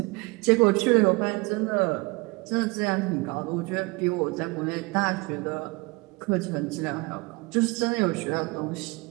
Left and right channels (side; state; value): left; quieter; 25.4 dB